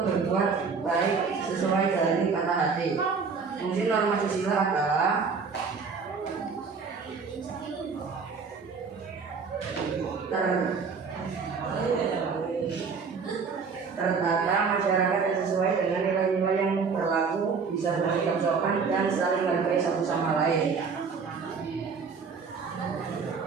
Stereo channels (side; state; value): left; quieter; 5.3 dB